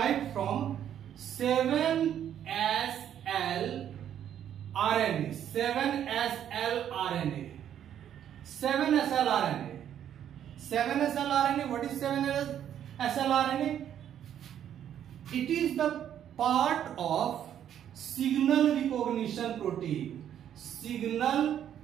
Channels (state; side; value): quieter; left; 10.0 dB